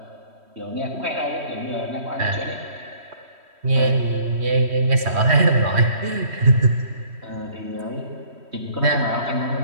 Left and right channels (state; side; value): late; left; 3.1 ms